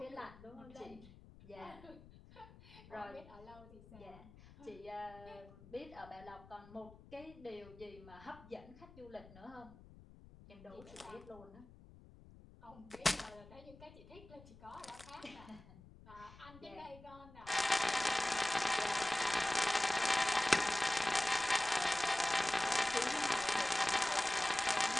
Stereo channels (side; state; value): left; noise; rumble, 20 dB below the sound